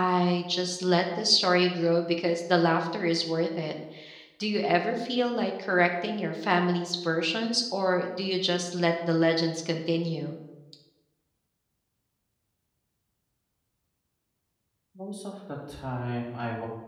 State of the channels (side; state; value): both; identical; correlation 1.00